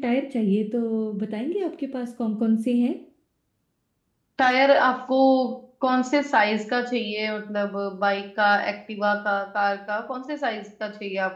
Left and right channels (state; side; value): identical; both; correlation 1.00